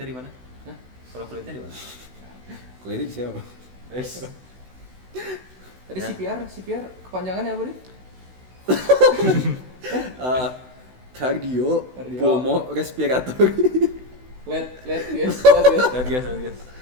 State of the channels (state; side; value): late; left; 16 ms